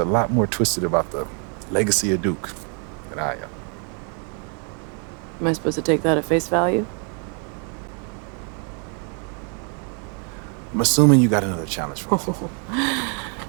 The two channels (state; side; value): quieter; left; 39.3 dB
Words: lot more twisted about the legacy of Duke than I am. Am I supposed to take that at face value? I'm assuming you got another challenge for me.